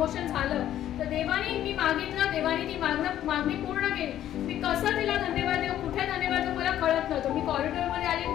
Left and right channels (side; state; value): right; quieter; 11.9 dB